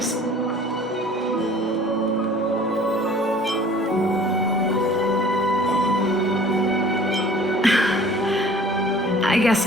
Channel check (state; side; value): normal; both; correlation 0.48